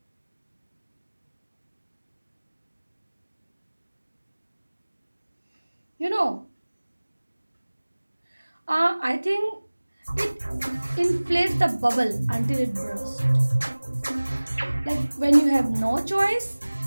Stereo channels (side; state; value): both; inverted; correlation -1.00